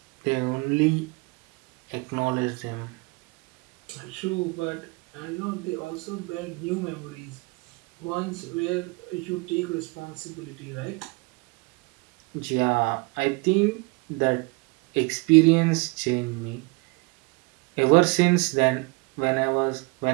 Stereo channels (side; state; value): left; quieter; 28.1 dB